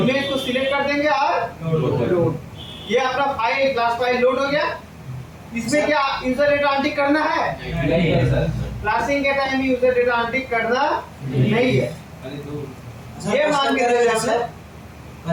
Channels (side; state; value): both; identical; correlation 1.00